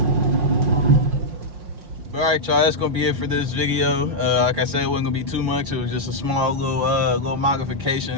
All right, y'all, that's gonna be it for this video. Like I said, it wasn't gonna be too much. It was just a small little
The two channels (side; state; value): left; late; 6.1 ms